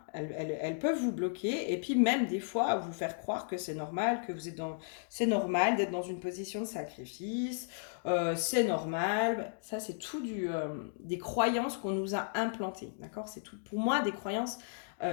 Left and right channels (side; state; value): right; silent; digital silence